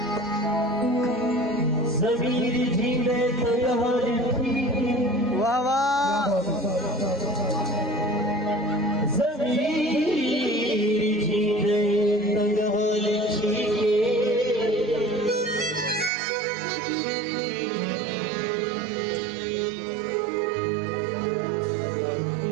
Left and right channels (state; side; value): drops out; left; at 16.1 s